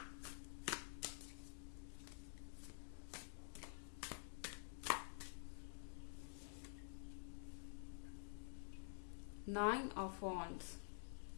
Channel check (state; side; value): silent; right; digital silence